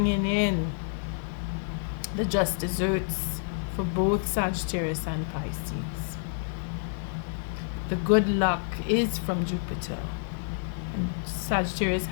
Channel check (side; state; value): right; silent; digital silence